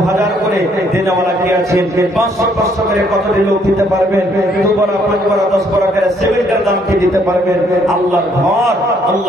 করে দেনেওয়ালা কি আছে, 500 করে কত লোক দিতে পারবেন, 2 বড়া 5 বড়া 10 বড়া করে সিমেন্টের দাম কি দিতে পারবেন। আল্লাহর ঘর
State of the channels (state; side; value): normal; both; correlation 0.67